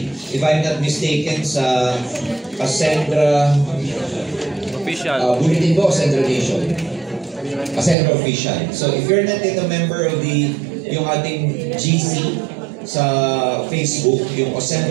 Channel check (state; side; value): drops out; left; at 8.0 s